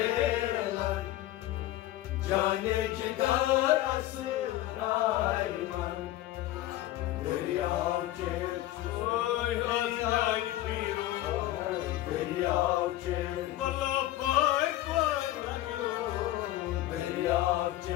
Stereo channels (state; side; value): quieter; right; 15.1 dB